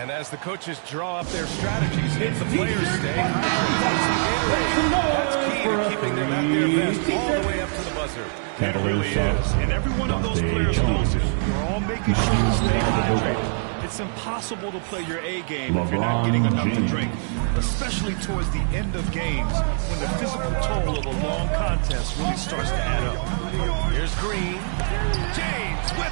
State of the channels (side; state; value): left; silent; 63 dB below the other